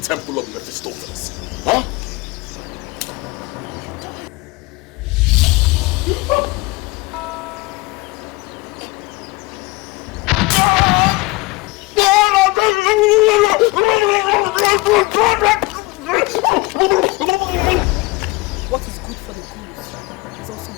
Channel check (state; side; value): quieter; right; 22.6 dB